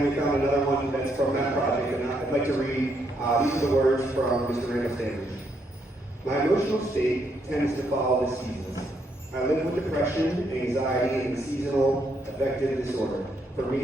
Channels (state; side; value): normal; both; correlation 0.75